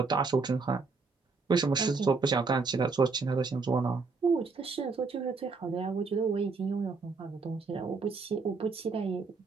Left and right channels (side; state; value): left; quieter; 4.4 dB